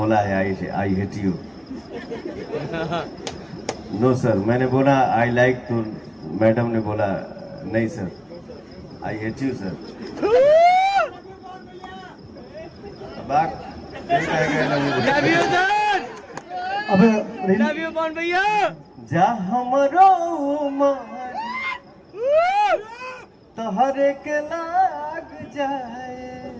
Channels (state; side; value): identical; both; correlation 1.00